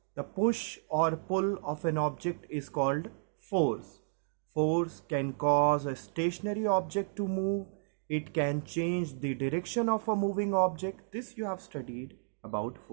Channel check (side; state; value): left; silent; digital silence